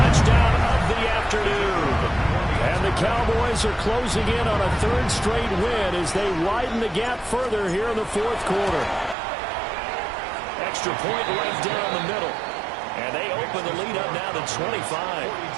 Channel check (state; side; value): drops out; left; at 9.2 s